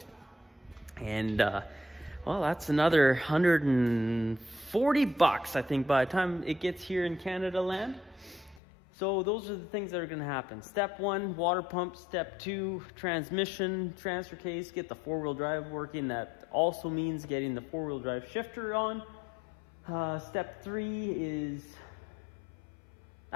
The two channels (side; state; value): right; drops out; at 8.6 s